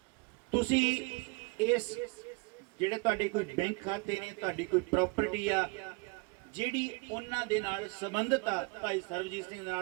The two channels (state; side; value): quieter; left; 29.4 dB